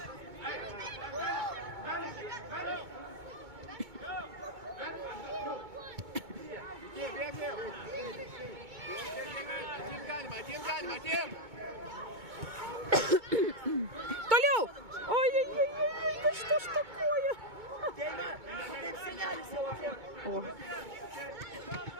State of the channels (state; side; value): late; left; 2.2 ms